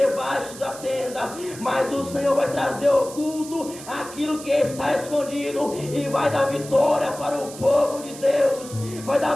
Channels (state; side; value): noise; right; hiss, 14 dB below the sound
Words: da tenda. Mas o Senhor vai trazer oculto aquilo que está escondido e vai dar vitória para o povo de Deus. Vai dar